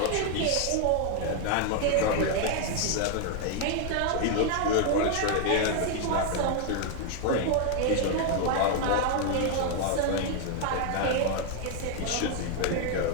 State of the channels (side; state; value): both; different; correlation 0.01